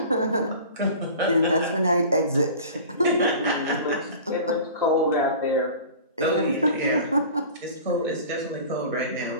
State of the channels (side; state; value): both; inverted; correlation -0.40